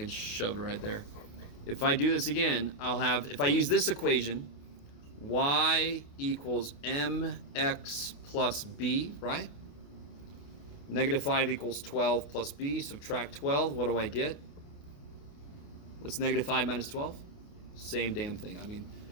shove it right there. If I do this again, I'll have, if I use this equation, y equals mx plus b, right? Negative 5 equals 12 plus b. Subtract 12. What do I get? What's negative 5 minus 12? Same damn thing. I mean,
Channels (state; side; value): late; right; 28 ms